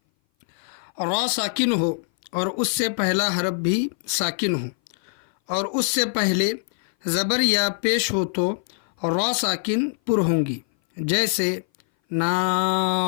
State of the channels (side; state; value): right; silent; 58 dB below the other